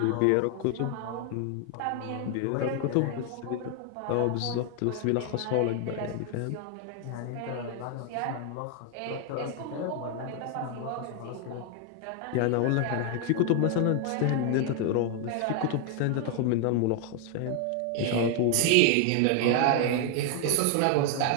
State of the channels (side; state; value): both; different; correlation 0.00